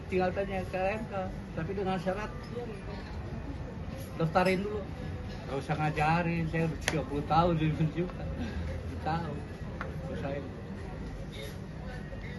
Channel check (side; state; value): both; identical; correlation 1.00